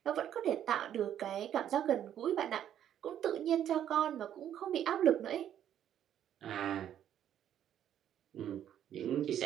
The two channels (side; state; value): left; quieter; 10.4 dB